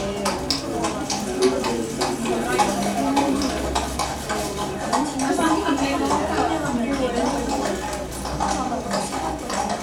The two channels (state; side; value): identical; both; correlation 1.00